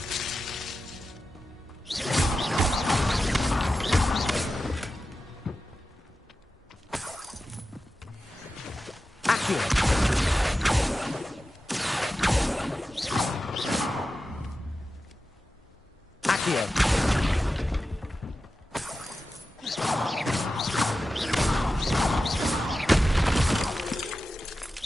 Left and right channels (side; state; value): both; normal; correlation 0.92